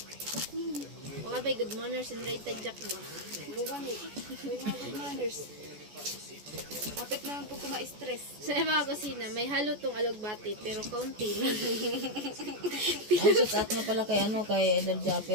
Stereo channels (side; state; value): left; late; 14 ms